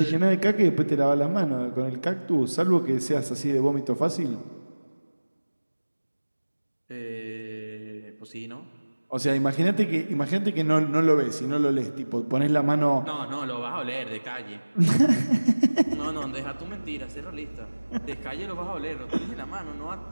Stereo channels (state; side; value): inverted; both; correlation -1.00